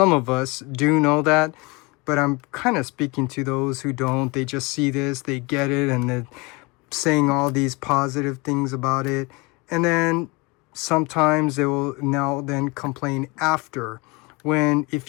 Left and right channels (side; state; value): right; quieter; 26.5 dB